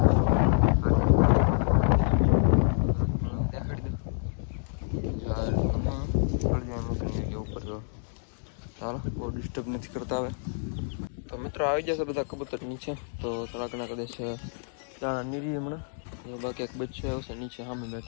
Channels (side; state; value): right; silent; digital silence